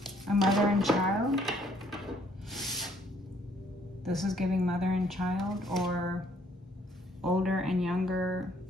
A mother and child. This is giving mother and child, or older and younger.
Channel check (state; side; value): normal; both; correlation 0.64